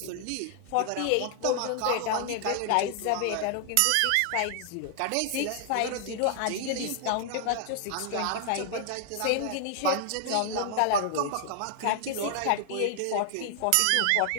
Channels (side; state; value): both; different; correlation 0.00